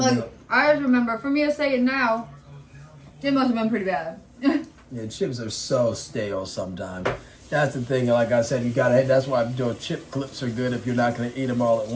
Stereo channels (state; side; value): identical; both; correlation 1.00